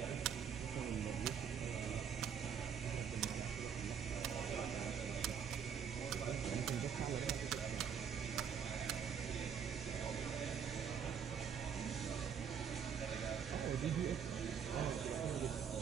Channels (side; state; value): left; quieter; 7.5 dB